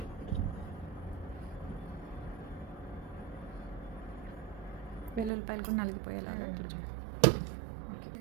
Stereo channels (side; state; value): left; drops out; at 5.3 s